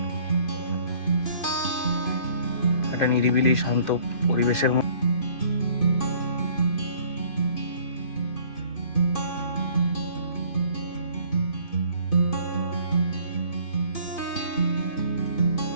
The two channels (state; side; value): late; right; 2.5 ms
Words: একটা নিরিবিলি শান্ত পরিবেশের মধ্যে